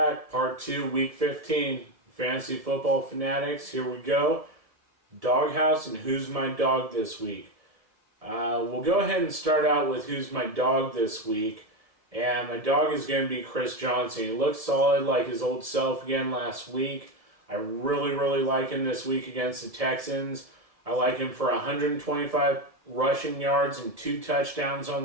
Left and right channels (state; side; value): late; left; 1.7 ms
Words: Part 2, Week 15. Fantasy Football Fanatics. Here we go. Doghouse and Who's My Dog this week. We'll go ahead and start out with Who's My Dog this week. And my dog is going to be Chris Johnson. He looks solid like his old self again last week. I really like him this week against the Texans. I like him for 125 rushing yards and 2 touchdowns